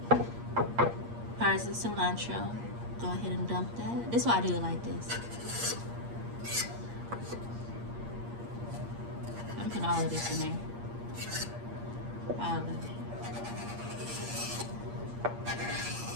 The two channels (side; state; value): left; late; 8.6 ms